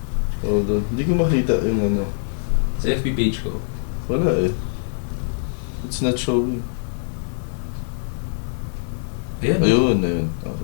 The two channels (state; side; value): silent; right; 63 dB below the other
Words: Hold on. Hindi ko makita yung ano. Sa FB page ko. Wala eh. It's not showing. Ayan. Ayun.